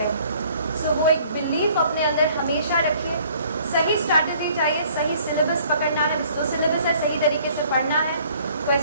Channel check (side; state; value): both; inverted; correlation -0.57